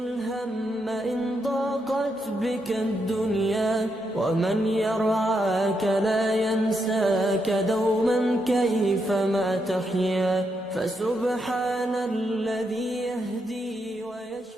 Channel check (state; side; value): normal; both; correlation 0.81